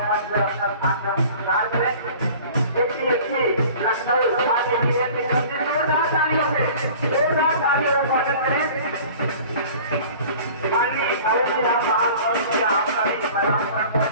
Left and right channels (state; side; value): inverted; both; correlation -0.45